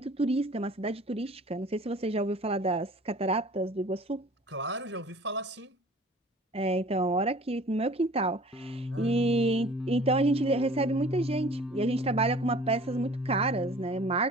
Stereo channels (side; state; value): both; normal; correlation 0.48